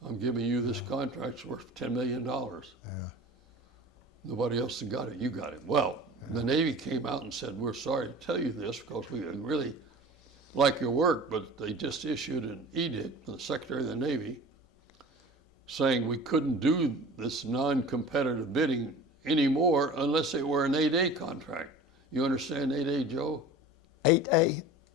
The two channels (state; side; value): normal; both; correlation 0.39